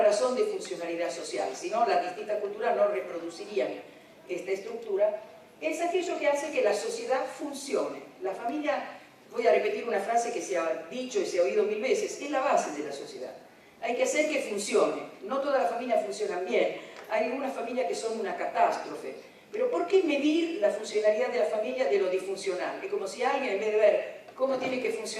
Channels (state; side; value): identical; both; correlation 1.00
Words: razón de funcionalidad social, si no, las distintas culturas no reproducirían esta estructura. Es aquello que hace que la sociedad funcione. La familia, voy a repetir una frase que se ha dicho y se ha oído mil veces, es la base de la sociedad. Hay que hacer que funcione. No todas las familias funcionan bien. Hay algunas familias que son una catástrofe. Pero ¿por qué medir la funcionalidad de la familia de lo disfuncional? Es como si alguien, en vez de ver cómo tiene que